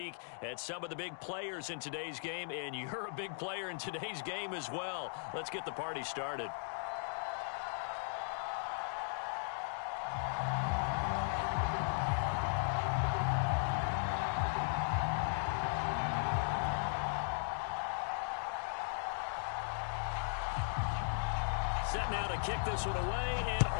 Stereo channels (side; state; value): right; silent; digital silence